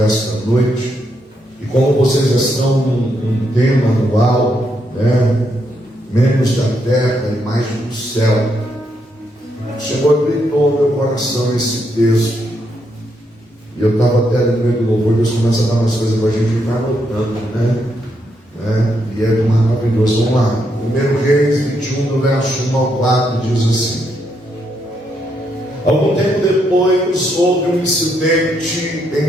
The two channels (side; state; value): both; normal; correlation 0.78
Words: esta noite. E como vocês já estão num tema anual, né? Menos da terra e mais do céu, o Senhor gritou no meu coração esse texto. E eu estava até ali no meio do louvor, Deus começa a dar umas coisas para a gente ficar anotando, né? E é maravilhoso. Vamos lá. 1 Reis 21, do verso 1 ao 4, diz assim: Algum tempo depois houve um incidente